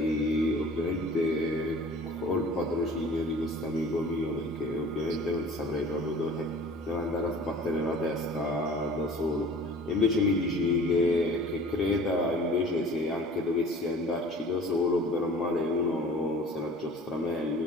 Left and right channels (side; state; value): both; normal; correlation 0.45